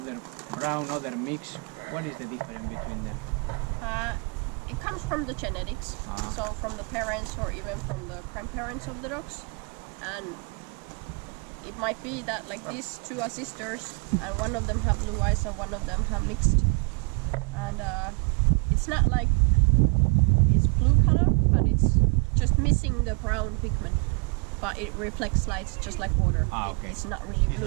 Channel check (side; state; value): left; quieter; 33.9 dB